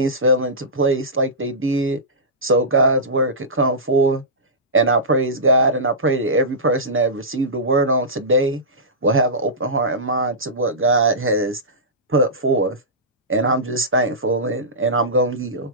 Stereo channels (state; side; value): normal; both; correlation -0.17